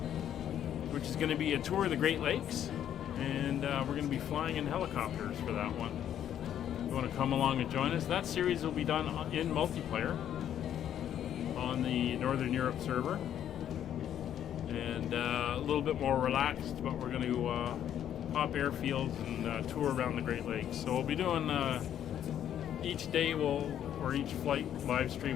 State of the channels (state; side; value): quieter; right; 10.2 dB